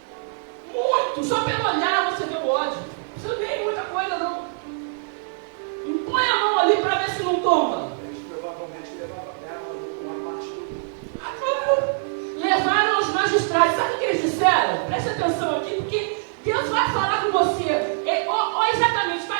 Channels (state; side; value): silent; left; 62 dB below the other